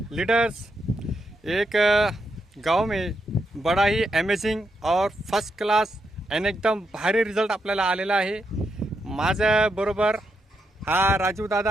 leaders. एक गांव में बड़ा ही अमेजिंग और फर्स्ट क्लास आणि एकदम भारी रिझल्ट आपल्याला आलेला आहे। माझ्या बरोबर हा राजू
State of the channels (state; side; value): normal; both; correlation 0.82